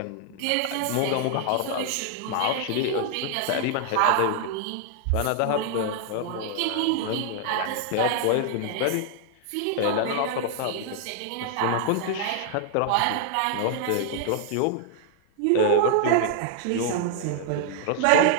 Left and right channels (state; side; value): different; both; correlation 0.00